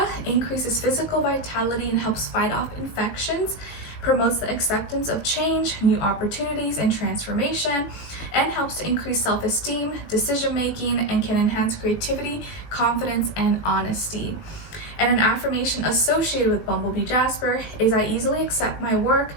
increases physical vitality and helps fight off infections, promotes the acceptance of change, new opportunities, and transformation, and helps to increase self-esteem, decision-making, and can enhance creativity, confidence, and honesty. And an affirmation associated with Bumblebee Jasper is, I easily accept my work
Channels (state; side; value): late; right; 19 ms